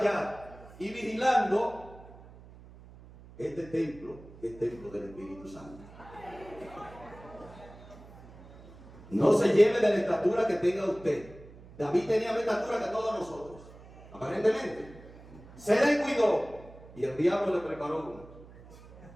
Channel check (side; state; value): right; noise; hum, 20 dB below the sound